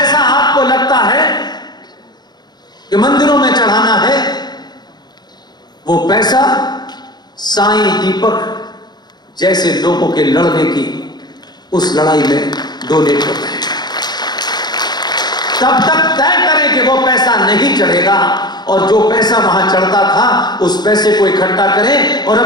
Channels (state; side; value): late; right; 0.20 ms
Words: आपको लगता है कि मंदिरों में चढ़ाना है वो पैसा साईं दीपक जैसे लोगों के लड़ने की उस लड़ाई में डोनेट करते हैं। तब तक तय करें कि वो पैसा नहीं चढ़ेगा और जो पैसा वहां चढ़ता था उस पैसे को इकट्ठा करें और